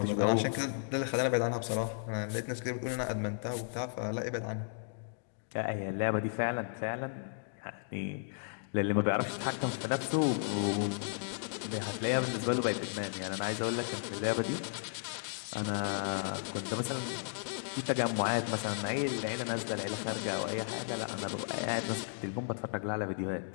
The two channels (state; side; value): silent; right; digital silence